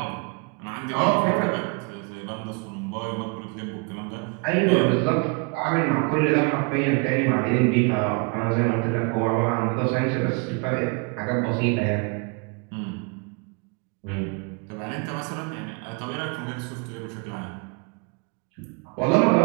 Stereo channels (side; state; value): left; quieter; 34.1 dB